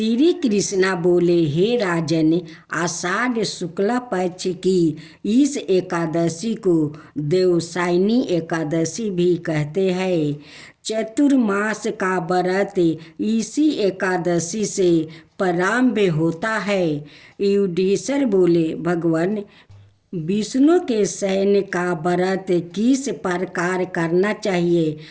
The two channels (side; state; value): both; identical; correlation 1.00